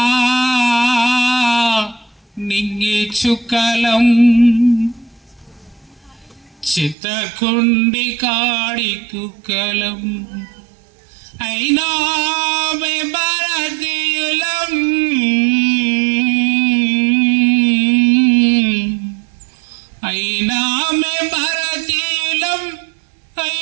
నింగి చుక్కలం చిత్తకుండి కాడి కుక్కలం అయినా మే భారతీయులం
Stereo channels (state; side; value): drops out; left; at 7.0 s